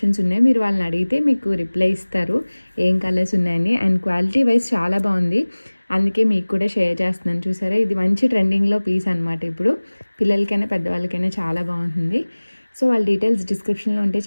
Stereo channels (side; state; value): both; inverted; correlation -1.00